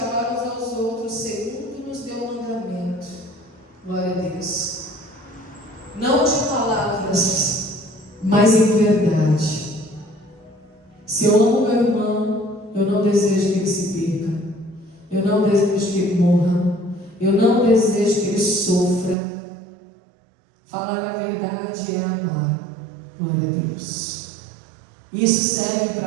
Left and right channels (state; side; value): drops out; left; at 19.2 s